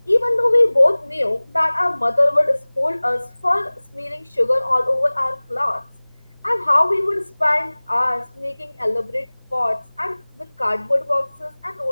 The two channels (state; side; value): inverted; both; correlation -1.00